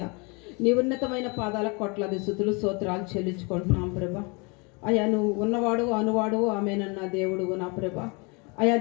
నీ ఉన్నతమైన పాదాల కొట్లాది స్తుతులు స్తోత్రాలు చెల్లించుకుంటున్నాం ప్రభా. అయ్యా, నువ్వు ఉన్నవాడు అనువాడు ఆమెనన్న దేవుడు నా ప్రభా. అయా,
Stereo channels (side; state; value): right; quieter; 30.7 dB